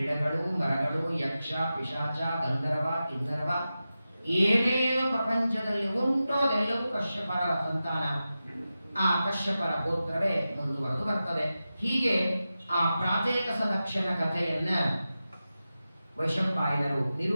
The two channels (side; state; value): both; inverted; correlation -0.93